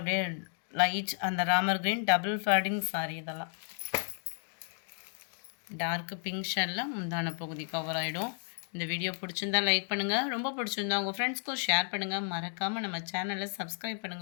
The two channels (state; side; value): silent; right; 56 dB below the other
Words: லைட் அந்த Ramar green double fading sorry. இதெல்லாம் டார்க்கு பிங்க் ஷேடில் முந்தான பகுதி கவர் ஆகிடும். இந்த வீடியோ பிடிச்சிருந்தா லைக் பண்ணுங்கள். ரொம்ப பிடிச்சிருந்தா உங்கள் ஃப்ரெண்ட்ஸ்க்கும் ஷேர் பண்ணுங்கள். மறக்காமல் நம்ம சேனலை சப்ஸ்கிரைப்